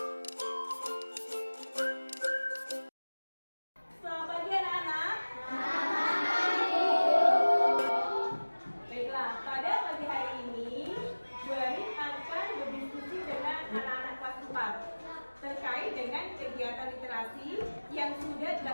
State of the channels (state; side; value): inverted; both; correlation -1.00